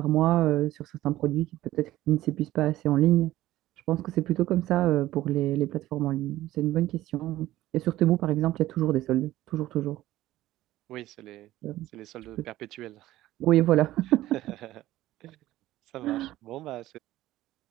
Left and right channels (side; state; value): left; quieter; 15.3 dB